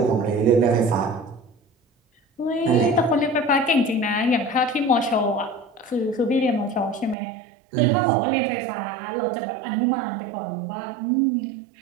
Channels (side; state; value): left; drops out; at 7.2 s